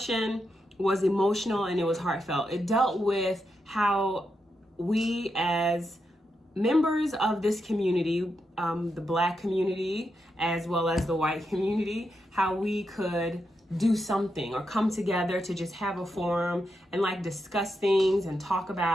was emotional and it was heartfelt. It dealt with how we as members of this community, the Black community, as well as the white community, how we could do something or come together to just have a forum and like discuss things and talk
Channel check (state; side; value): normal; both; correlation 0.85